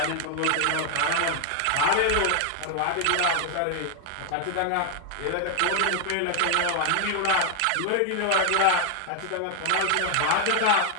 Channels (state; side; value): different; both; correlation 0.00